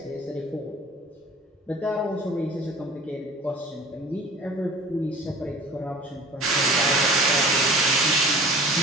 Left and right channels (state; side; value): normal; both; correlation 0.43